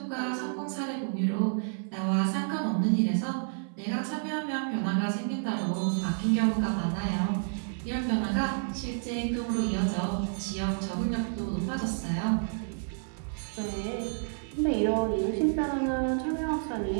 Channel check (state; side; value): silent; left; 58 dB below the other